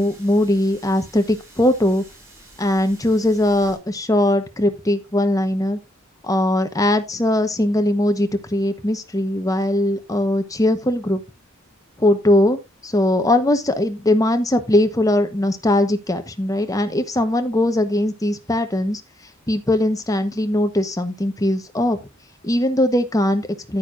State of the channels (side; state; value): both; normal; correlation 0.76